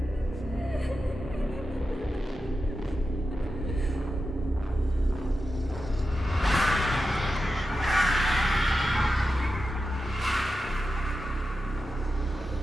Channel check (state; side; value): normal; both; correlation 0.90